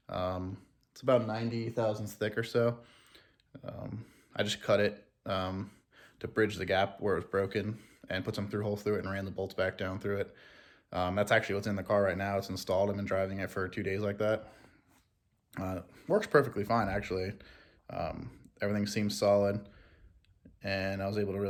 It's about 90 thousandths thick or so. I just cut it to bridge the gap where it was broken and put some through holes through it and ran the bolts back down through it. That's actually what's in the car right now. It's installed. I've been driving it for 2 days like that. Works perfectly fine, actually. Everything seems solid, and I was able to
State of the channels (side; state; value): both; identical; correlation 1.00